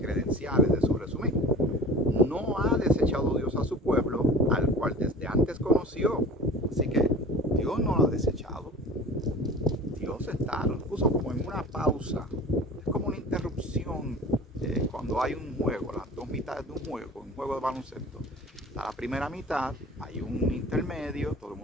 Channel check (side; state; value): both; normal; correlation 0.41